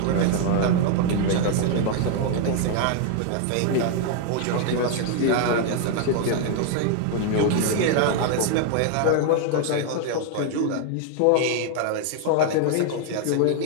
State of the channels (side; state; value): both; different; correlation 0.00